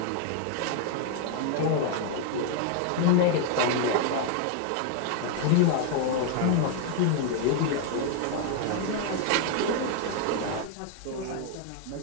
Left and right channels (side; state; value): both; different; correlation 0.00